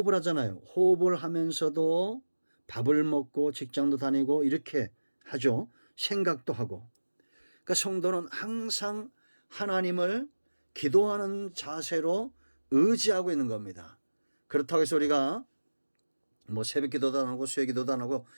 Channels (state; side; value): inverted; both; correlation -1.00